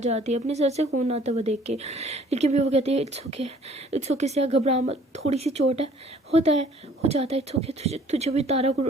है अपने सर से खून आता हुआ देख के। लेकिन भी वो कहती है इट्स ओके सिया, घबरा मत, थोड़ी सी चोट है, होता है, हो जाता है, इट्स ओके, तुझे भी तारा को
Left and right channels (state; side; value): normal; both; correlation 0.56